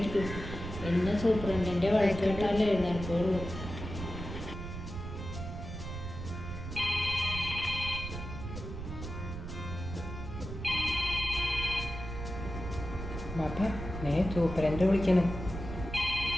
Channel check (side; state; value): right; noise; rumble, 8 dB below the sound